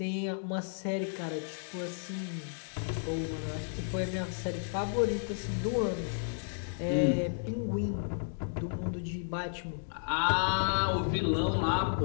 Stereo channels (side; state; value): right; silent; digital silence